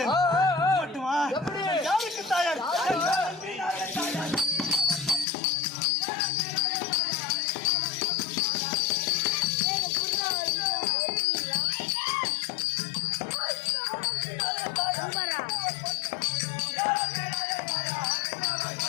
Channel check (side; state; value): right; drops out; at 5.2 s